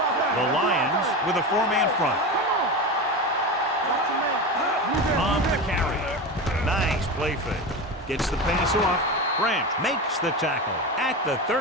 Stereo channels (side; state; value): both; normal; correlation 0.23